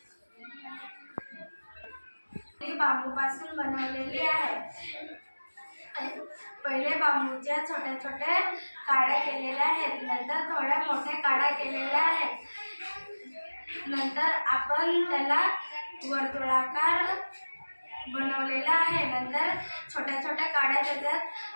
ही बांबूपासून बनवलेली आहे. पहिले बांबूच्या छोट्या छोट्या काड्या केलेल्या आहेत, नंतर थोड्या मोठ्या काड्या केलेल्या आहेत. नंतर आपण त्याला वर्तुळाकार बनवलेला आहे. नंतर छोट्या छोट्या काड्या त्याच्यात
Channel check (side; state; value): both; inverted; correlation -1.00